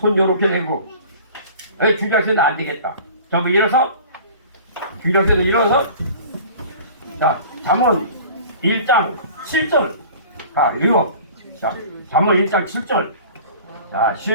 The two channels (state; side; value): inverted; both; correlation -0.43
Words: 요렇게 내고 주일학생들 안 되겠다. 전부 일어서 주일학생들 일어서 자, 잠언 1장 7절 자, 읽어. 자, 잠언 1장 7절 자,